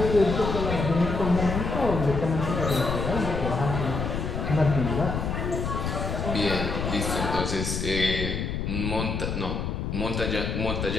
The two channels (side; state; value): left; noise; rumble, 2 dB below the sound